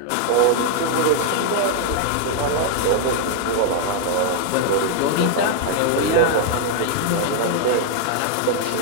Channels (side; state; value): both; different; correlation 0.00